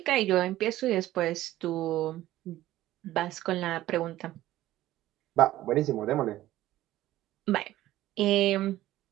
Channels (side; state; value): left; quieter; 15.0 dB